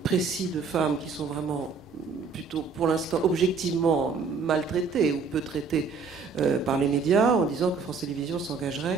précis de femmes qui sont vraiment plutôt, pour l'instant, objectivement maltraitées ou peu traitées par les médias, en disant que France Télévisions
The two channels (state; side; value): quieter; left; 5.0 dB